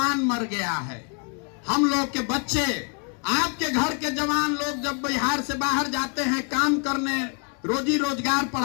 मर गया है। हम लोग के बच्चे, आपके घर के जवान लोग जब बिहार से बाहर जाते हैं काम करने, रोजी रोजगार,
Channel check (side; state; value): right; quieter; 38.6 dB